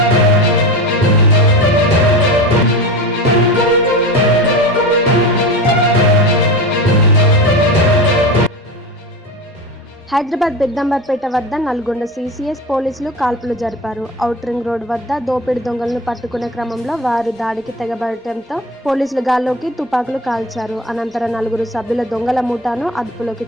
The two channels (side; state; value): both; normal; correlation 0.27